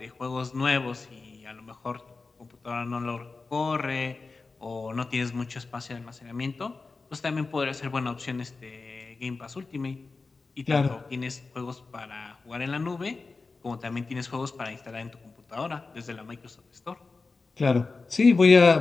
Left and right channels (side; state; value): right; quieter; 4.0 dB